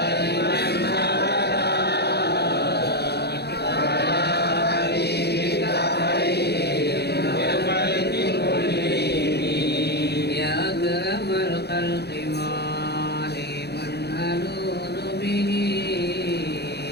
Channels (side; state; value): right; late; 0.48 ms